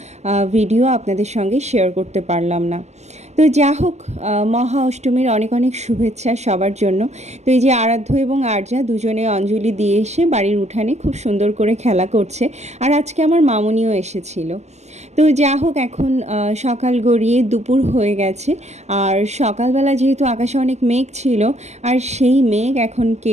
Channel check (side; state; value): left; late; 0.33 ms